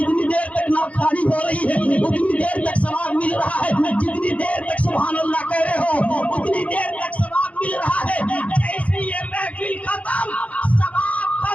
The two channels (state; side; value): late; right; 0.066 ms